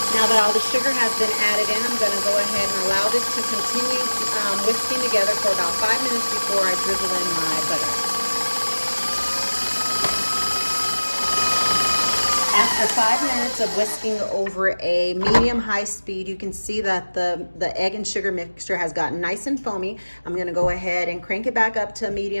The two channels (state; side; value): inverted; both; correlation -1.00